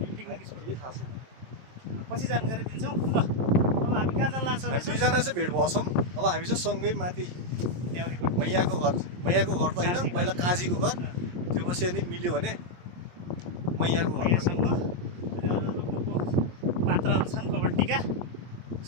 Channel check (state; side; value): late; left; 23 ms